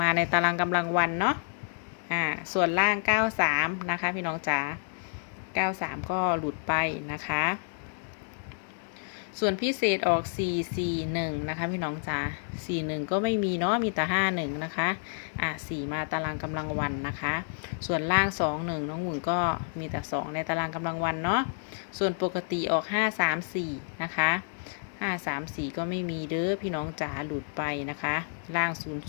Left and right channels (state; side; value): silent; right; 58 dB below the other